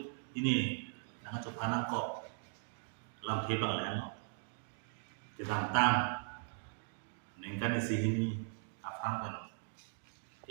ini nang coba nang kok lam hebang lah no. Ketantang nengkan isi ini aphan kan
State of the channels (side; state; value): left; silent; digital silence